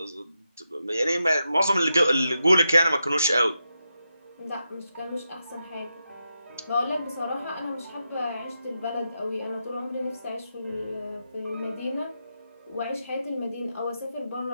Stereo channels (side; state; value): both; inverted; correlation -0.87